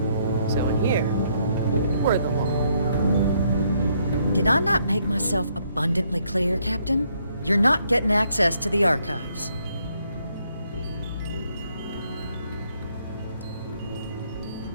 So in here, we're the law. Did I not make myself abundantly clear, Captain? You're not getting access to the archives.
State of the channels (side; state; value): both; inverted; correlation -0.71